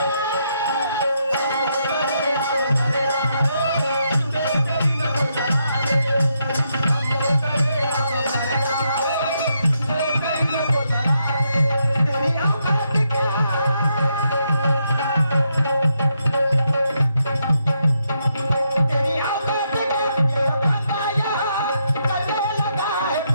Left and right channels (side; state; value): both; inverted; correlation -0.79